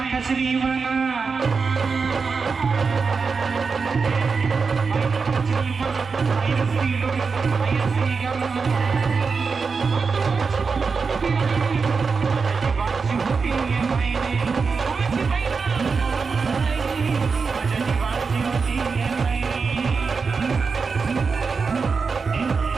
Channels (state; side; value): quieter; left; 5.0 dB